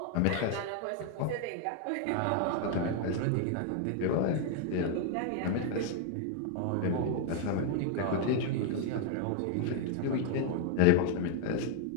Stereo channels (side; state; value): both; different; correlation 0.01